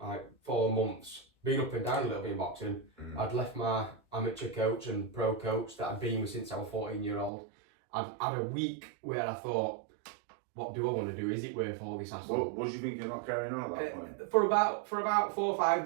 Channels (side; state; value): left; drops out; at 7.3 s